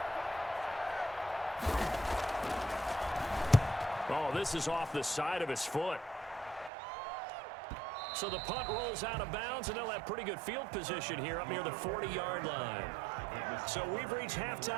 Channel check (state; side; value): drops out; left; at 6.7 s